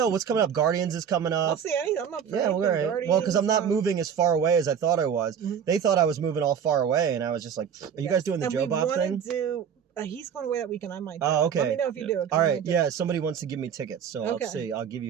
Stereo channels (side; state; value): left; quieter; 7.9 dB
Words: what's coming up. Guardians is coming I'll up. see anything. I'm up for Yeah, anything. well, all right. Guardians, Well, because I'm not moving as far away as I thought I was. Mhm. They thought I was moving all far away, and I was just like, "Are you guys doing the and Joe we Bob wanna thing?" Do. He's going away that weekend. I might. Oh, okay. Let me know if you Yeah. do it. All right, yeah. Somebody wants to give me tickets, so Okay. I'll see. I'll give